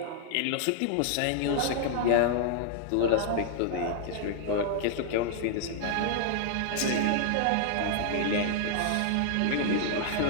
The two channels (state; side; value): different; both; correlation 0.00